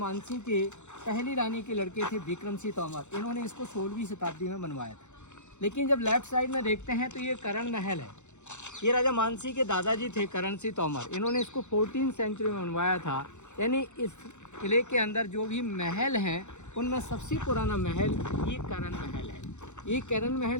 के पहली रानी के लड़के थे विक्रम सिंह तोमर। इन्होंने इसको 16वीं शताब्दी में बनवाया था। लेकिन जब लेफ्ट साइड में देखते हैं तो ये करण महल है। ये राजा मानसिंह के दादाजी थे करण सिंह तोमर। इन्होंने इसको 14वीं सेंचुरी में बनवाया था। यानी इस किले के अंदर जो भी महल हैं उनमें सबसे पुराना महल ये करण महल है। ये करण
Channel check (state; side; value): late; right; 0.83 ms